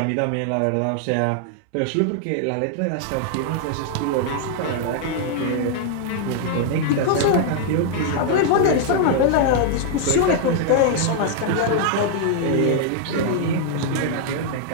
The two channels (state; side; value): different; both; correlation 0.00